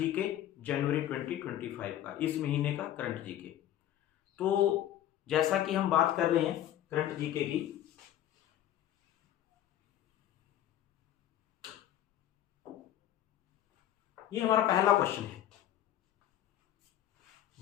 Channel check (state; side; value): quieter; right; 12.1 dB